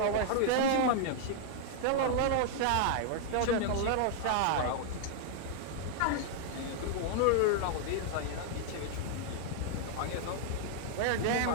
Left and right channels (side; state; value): both; different; correlation -0.01